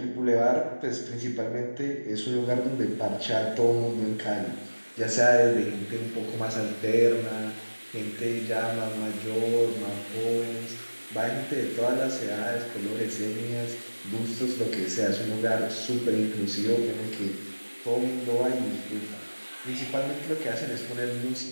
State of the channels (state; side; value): inverted; both; correlation -1.00